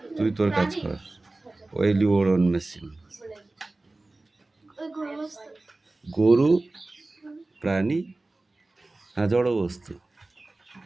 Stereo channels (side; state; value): left; quieter; 3.0 dB